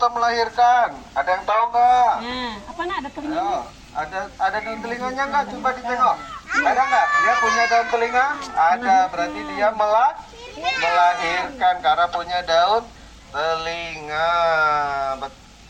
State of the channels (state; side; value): identical; both; correlation 1.00